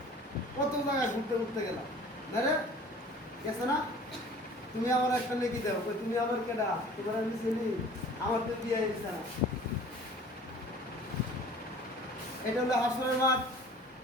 কত জায়গায় ঘুরতে গেলাম, না রে গেছে না? তুমি আমার একটা নেকি দাও, তুমি আমার কেডা, তোমার আমি চিনি, আমার তো বিয়ে হয়েছে না। এটা হলো হাসরের মাঠ।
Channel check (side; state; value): both; normal; correlation 0.47